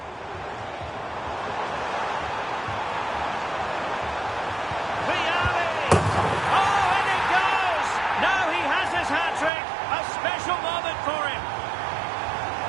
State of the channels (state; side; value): drops out; left; at 9.5 s